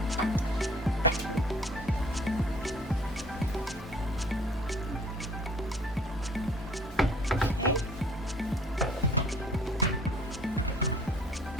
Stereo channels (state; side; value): normal; both; correlation 0.54